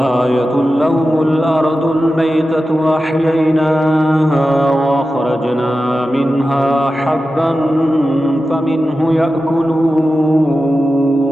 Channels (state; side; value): normal; both; correlation 0.93